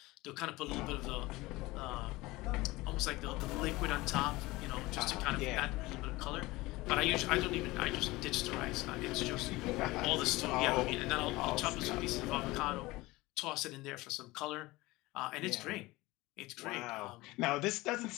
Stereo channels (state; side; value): quieter; right; 20.4 dB